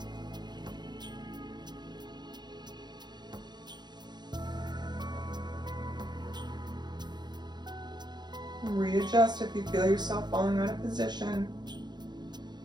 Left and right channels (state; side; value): late; left; 0.21 ms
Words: Readjust if you feel yourself falling out of position.